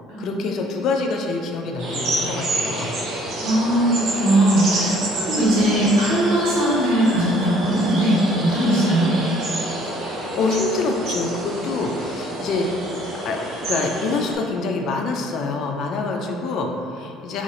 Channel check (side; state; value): both; normal; correlation 0.59